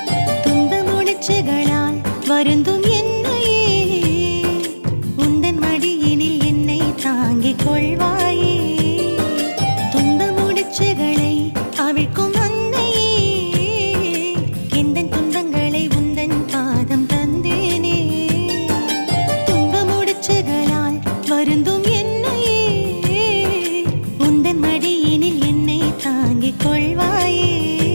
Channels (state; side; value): inverted; both; correlation -1.00